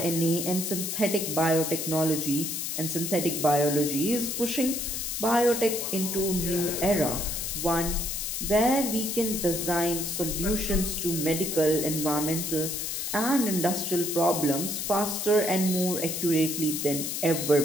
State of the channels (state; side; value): noise; left; hiss, 3 dB below the sound